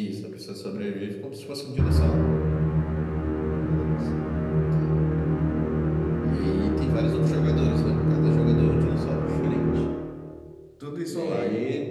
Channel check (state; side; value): identical; both; correlation 1.00